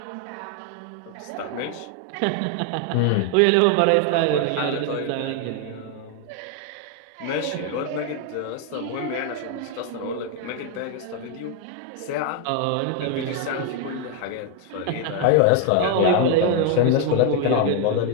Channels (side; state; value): both; different; correlation 0.01